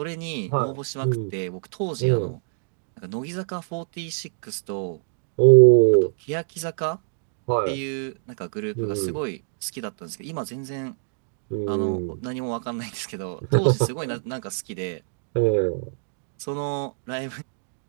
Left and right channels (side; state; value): left; silent; digital silence